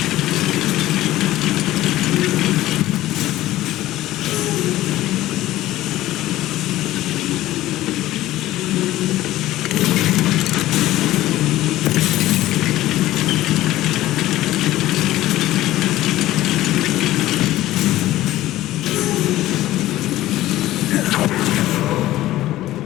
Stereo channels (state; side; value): quieter; right; 15.4 dB